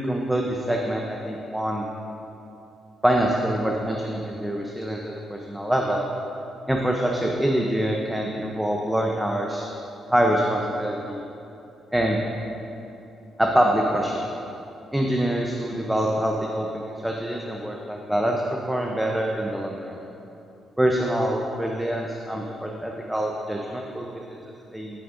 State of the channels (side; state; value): both; normal; correlation 0.87